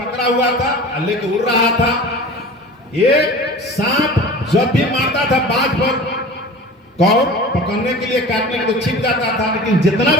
हुआ था, लेके उड़ रहा था। एक सांप जब भी मारता था बाज पर, कौर पकड़ने के लिए, काटने के लिए छिप जाता था, लेकिन जितना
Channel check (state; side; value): normal; both; correlation 0.38